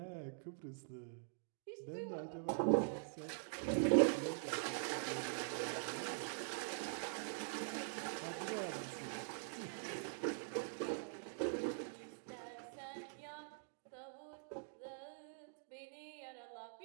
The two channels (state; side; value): silent; left; digital silence